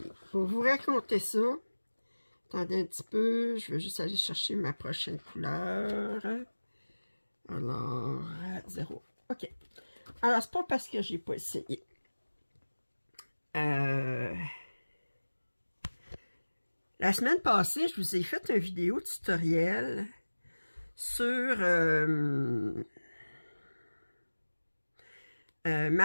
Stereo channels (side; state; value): both; inverted; correlation -1.00